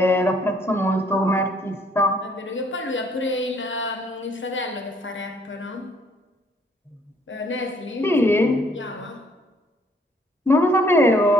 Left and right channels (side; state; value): both; normal; correlation 0.63